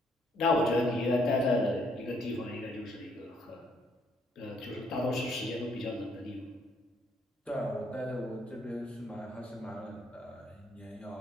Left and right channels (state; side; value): normal; both; correlation 0.68